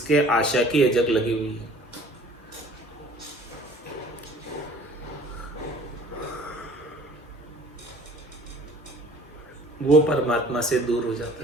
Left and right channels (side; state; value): both; normal; correlation 0.51